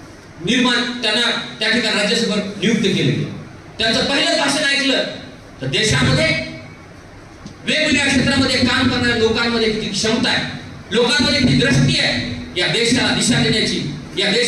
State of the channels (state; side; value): identical; both; correlation 1.00